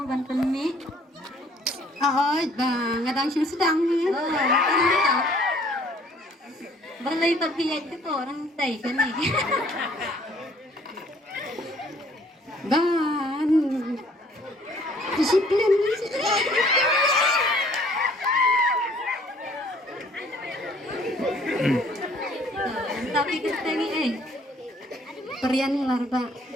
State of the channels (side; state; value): both; normal; correlation 0.58